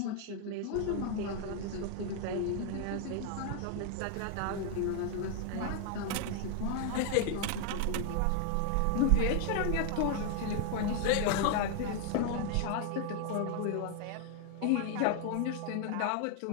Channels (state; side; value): different; both; correlation 0.00